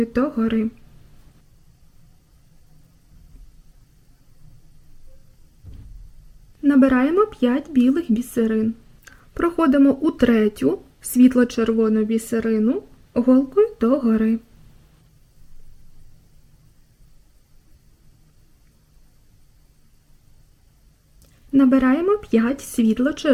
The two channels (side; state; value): both; identical; correlation 1.00